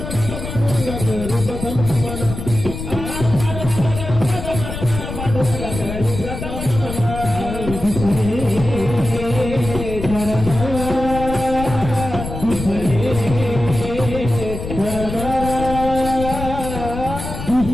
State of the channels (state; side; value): noise; left; rumble, 7 dB below the sound